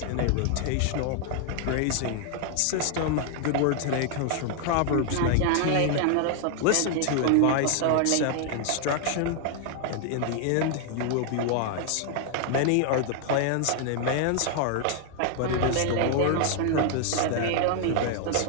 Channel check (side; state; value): both; different; correlation 0.00